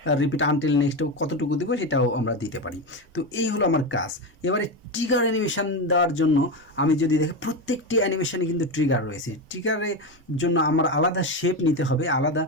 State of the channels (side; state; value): both; normal; correlation 0.16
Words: রিপিট আনটিল নেক্সট কতটুকু দেবো সেটাও আমরা দিতে পারি। তো এই হলো আমার কাজ। এবারে ট্রিগার অ্যানিমেশন দেওয়ার জন্য আমি যদি দেখি, প্রত্যেকটি অ্যানিমেশনে কিন্তু ট্রিগার রয়েছে। ট্রিগারের জন্য আমার আলাদা শেপ নিতে হবে, আলাদা,